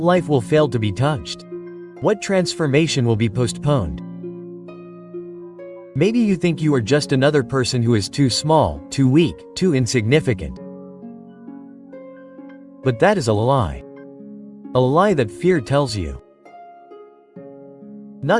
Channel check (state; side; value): identical; both; correlation 1.00